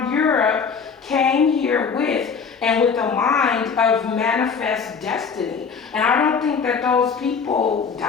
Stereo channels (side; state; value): right; quieter; 5.8 dB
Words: Europe came here with, and with the mind of manifest destiny. And I don't think that those people